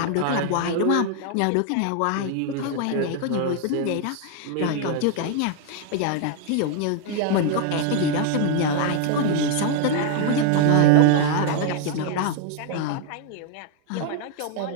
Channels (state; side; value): different; both; correlation 0.00